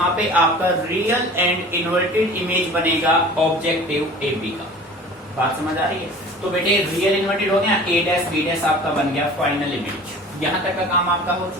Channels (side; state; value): both; normal; correlation 0.42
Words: पे आपका रियल एंड इन्वर्टेड इमेज बनेगा ऑब्जेक्टिव AB का। बात समझ आ रही है? तो बेटे रियल इन्वर्टेड हो गया, A डैश B डैश आपका बन गया फाइनल इमेज। यहां तक का काम आपका हो